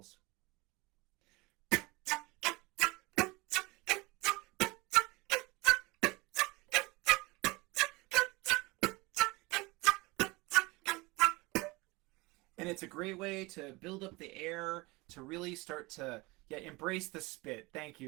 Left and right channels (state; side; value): quieter; left; 23.7 dB